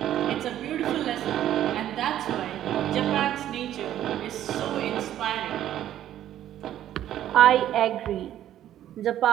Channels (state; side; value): quieter; left; 11.8 dB